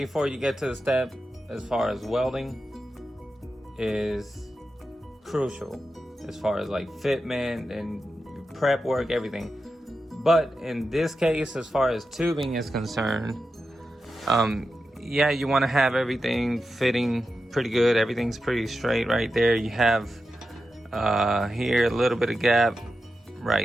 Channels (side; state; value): both; normal; correlation 0.90